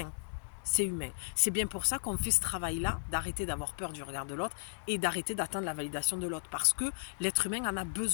C'est humain. C'est bien pour ça qu'on fait ce travail-là, d'arrêter d'avoir peur du regard de l'autre et d'arrêter d'attendre la validation de l'autre. Parce que l'être humain en a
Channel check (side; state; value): right; silent; digital silence